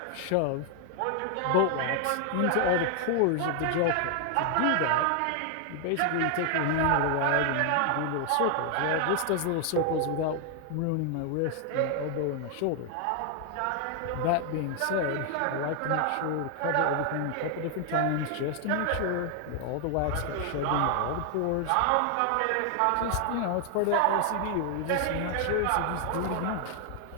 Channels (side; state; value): both; different; correlation 0.00